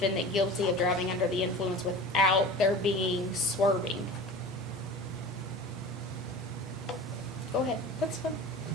guilty of driving under the influence without there being swerving? Go ahead. That's fine.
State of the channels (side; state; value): both; normal; correlation 0.36